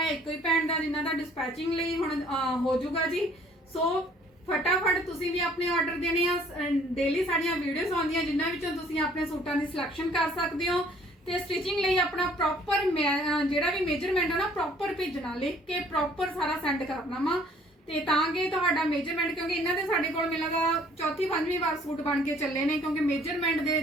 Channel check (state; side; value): normal; both; correlation 0.58